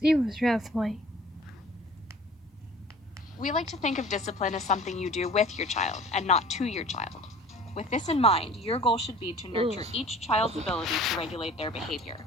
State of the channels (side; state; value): both; normal; correlation 0.46